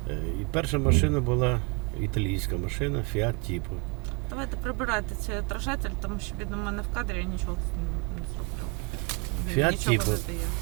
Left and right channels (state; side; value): quieter; left; 29.9 dB